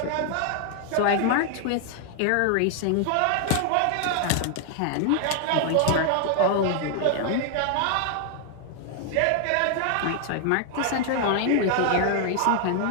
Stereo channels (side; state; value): both; different; correlation 0.00